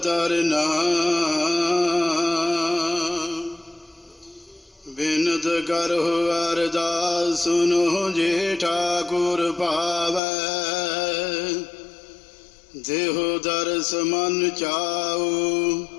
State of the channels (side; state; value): right; drops out; at 10.2 s